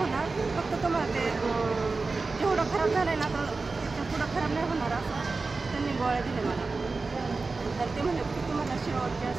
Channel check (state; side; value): quieter; left; 3.9 dB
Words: फक्त तुम्हाला ते जेवढं खराब झालं आहे ना तर त्याच्या पुढं खराब नाही होणार असं त्यांनी गोळ्या दिल्या मला। तर ते म्हणले की तुम्हाला शेवटच्या